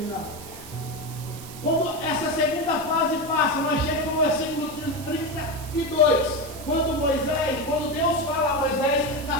Quando essa segunda fase passa, nós chegamos no versículo 32. Quando Deus fala a Moisés na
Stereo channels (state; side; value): noise; right; hiss, 15 dB below the sound